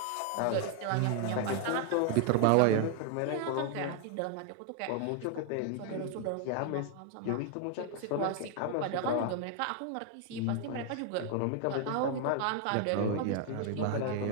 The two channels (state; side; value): different; both; correlation 0.00